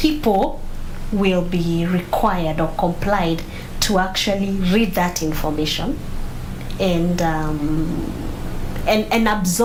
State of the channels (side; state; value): both; identical; correlation 1.00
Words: will be required or complied to actually read that information and